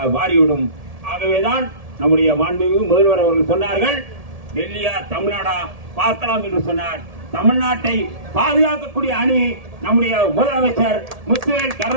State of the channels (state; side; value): late; left; 1.7 ms